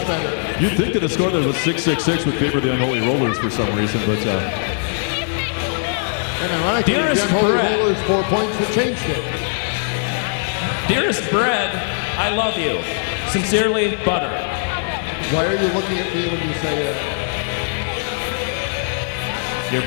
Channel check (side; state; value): right; silent; 64 dB below the other